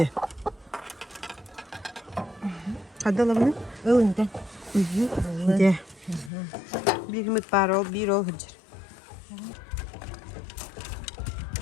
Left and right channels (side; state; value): right; drops out; at 6.3 s